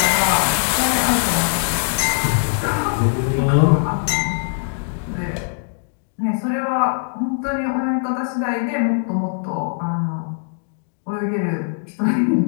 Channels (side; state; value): right; silent; digital silence